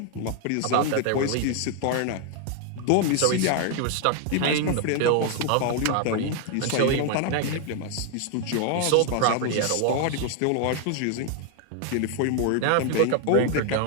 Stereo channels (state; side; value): different; both; correlation 0.00